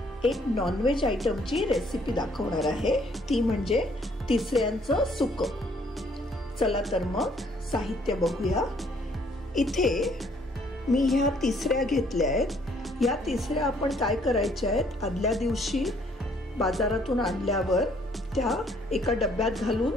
एक नॉनव्हेज आयटमची रेसिपी दाखवणार आहे, ती म्हणजे तिसऱ्यांचं सुकं। चला तर मग साहित्य बघूया। इथे मी ह्या तिसऱ्या घेतल्या आहेत। या तिसऱ्या आपण काय करायच्या आहेत, आदल्या दिवशी बाजारातून आणल्यावर त्या एका डब्यात घालून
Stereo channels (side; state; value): both; normal; correlation 0.64